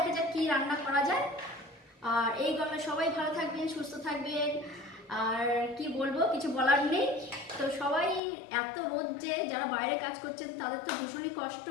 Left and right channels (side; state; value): right; drops out; at 8.2 s